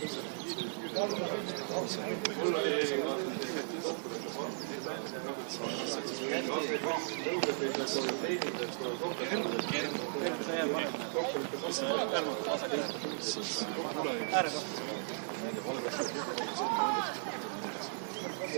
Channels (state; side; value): silent; left; digital silence